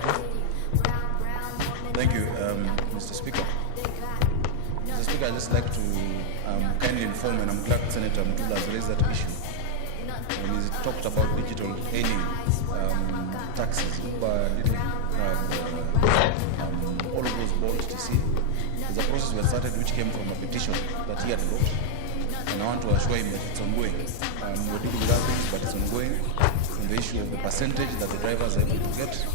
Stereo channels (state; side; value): different; both; correlation 0.00